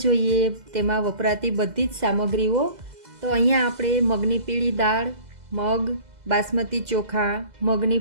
જોઈએ તેમાં વપરાતી બધી જ સામગ્રીઓ। તો અહીંયા આપણે મગની પીળી દાળ, મગ, બાસમતી ચોખા, મગની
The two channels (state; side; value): late; left; 2.0 ms